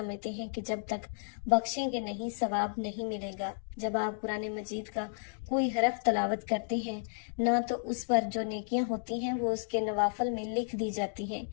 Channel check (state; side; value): silent; right; digital silence